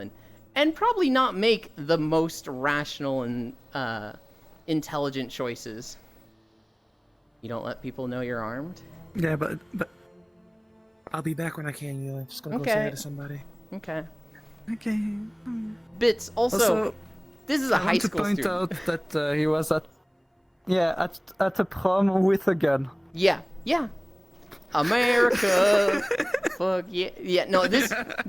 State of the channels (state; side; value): identical; both; correlation 1.00